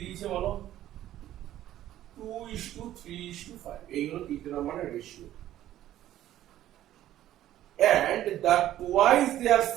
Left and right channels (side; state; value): left; quieter; 13.0 dB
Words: দিয়েছে বলো? 2:3:5 এই হলো তিনটে নাম্বারের ratio. And the twice their